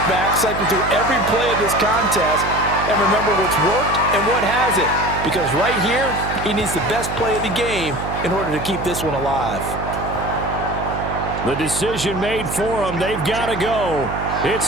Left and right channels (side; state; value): right; noise; hum, 7 dB below the sound